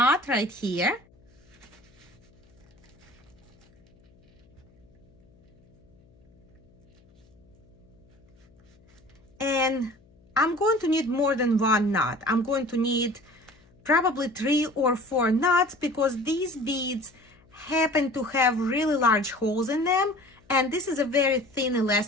right here. And I'm going to need more than one knot. I'm going to need probably 3 or 4 knots because these beads happen to have really large holes in them, and this is a very thin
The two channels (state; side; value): noise; left; hum, 30 dB below the sound